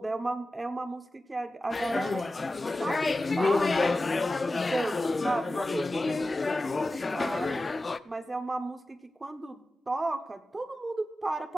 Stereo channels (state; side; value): normal; both; correlation 0.94